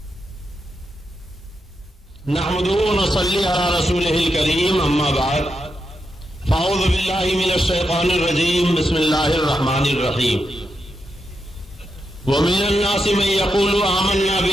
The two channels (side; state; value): both; normal; correlation 0.85